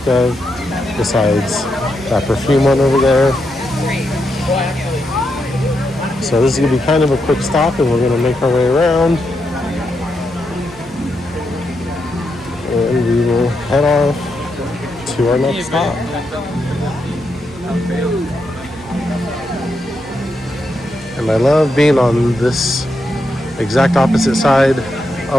of besides that perfume one over there. So this is going to be kind of a quick stop and we're going to make our way around. And we will head off to our next stop. And I love being on this exact opposite side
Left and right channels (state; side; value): noise; right; hum, 21 dB below the sound